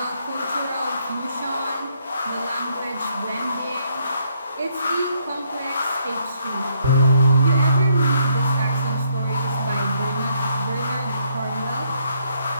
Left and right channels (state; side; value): inverted; both; correlation -0.71